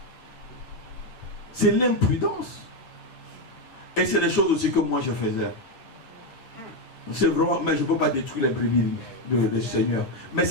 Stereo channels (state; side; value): late; right; 8.9 ms